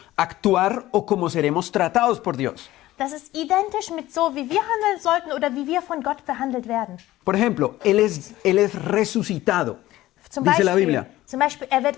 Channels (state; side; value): quieter; right; 16.0 dB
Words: actuar o como seremos tratados por Dios. das ist identisch mit so, wie wir handeln sollten oder wie wir von Gott behandelt werden. Por ejemplo, él es resucitado, dice la Biblia. Zum Beispiel